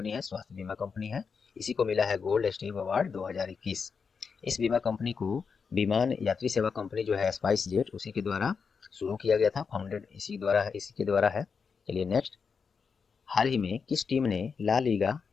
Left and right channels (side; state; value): right; quieter; 5.7 dB